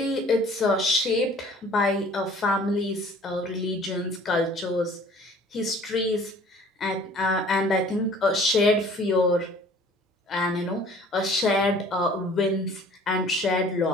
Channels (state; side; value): normal; both; correlation 0.51